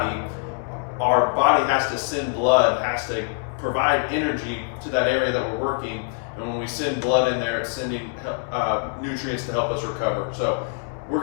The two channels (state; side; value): silent; right; 63 dB below the other